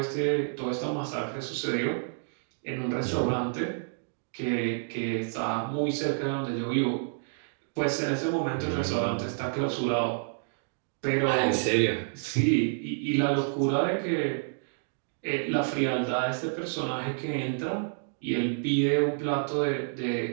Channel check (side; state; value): left; silent; digital silence